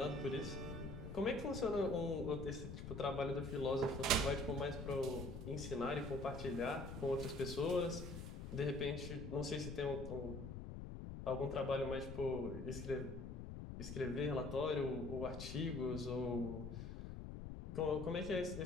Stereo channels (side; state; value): left; noise; rumble, 7 dB below the sound